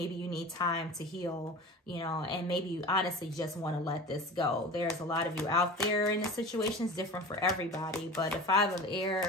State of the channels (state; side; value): normal; both; correlation 0.35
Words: you need time to heal, you know, and maybe you honestly just want to let this go. There's a lot of you out there in the situations, different for everybody, but the 5 of